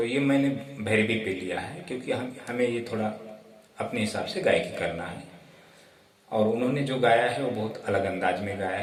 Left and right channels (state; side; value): identical; both; correlation 1.00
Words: ये मैंने भैरवी पे लिया है क्योंकि हमें ये थोड़ा अपने हिसाब से गायकी करना है। और उन्होंने जो गाया है वो बहुत अलग अंदाज में गाया